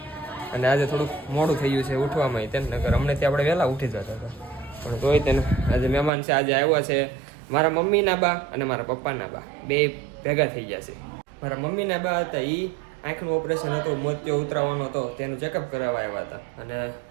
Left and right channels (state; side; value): drops out; left; at 6.1 s